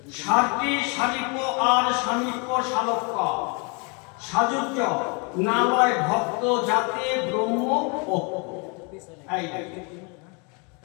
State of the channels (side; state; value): right; quieter; 33.2 dB